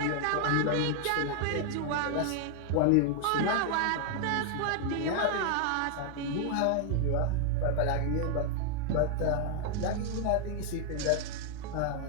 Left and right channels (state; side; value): different; both; correlation 0.00